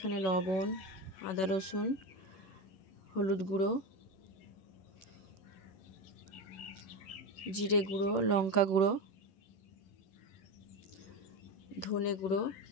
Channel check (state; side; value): late; right; 11 ms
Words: লবণ, আদা রসুন, হলুদ গুঁড়ো, জিরে গুঁড়ো, লঙ্কা গুঁড়ো, ধনে গুঁড়ো,